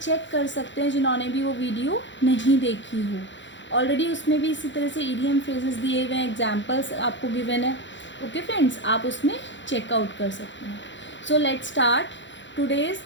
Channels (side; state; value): right; late; 0.54 ms